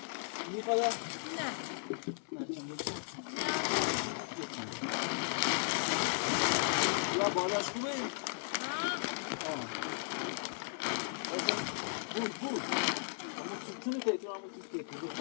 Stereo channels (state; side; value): silent; right; 54 dB below the other